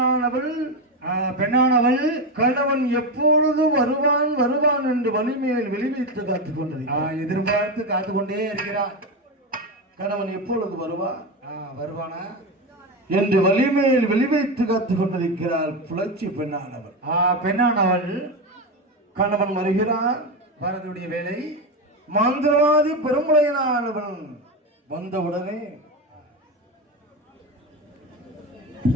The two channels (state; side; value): normal; both; correlation 0.16